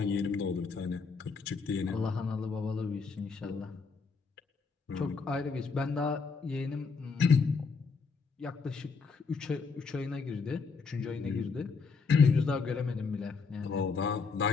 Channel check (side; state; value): right; quieter; 4.9 dB